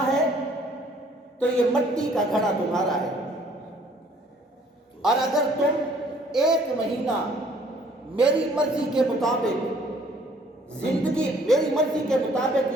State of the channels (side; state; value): both; normal; correlation 0.59